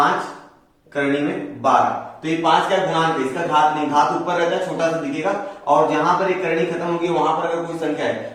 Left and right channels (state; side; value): identical; both; correlation 1.00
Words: करणी में 12, तो ये 5 क्या गुणांक है, इसका घात नहीं, घात ऊपर रहता है, छोटा सा दिखेगा। और जहां पर एक करणी खत्म होगी वहां पर अगर कोई संख्या है